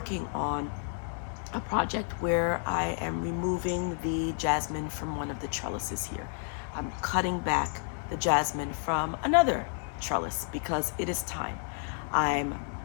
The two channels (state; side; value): silent; right; 57 dB below the other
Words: on a project where I am removing the jasmine from one of the trellises here. I'm cutting back the jasmine from another trellis because it is time. I'm